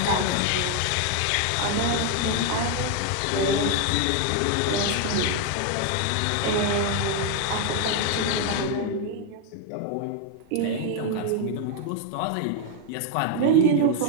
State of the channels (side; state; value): both; different; correlation 0.01